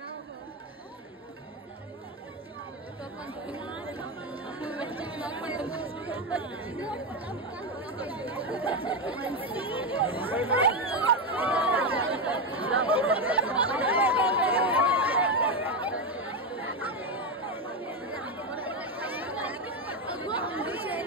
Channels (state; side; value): normal; both; correlation 0.10